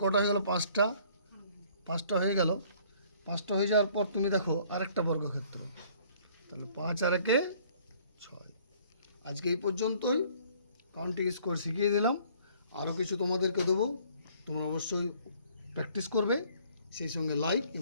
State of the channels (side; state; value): both; inverted; correlation -0.58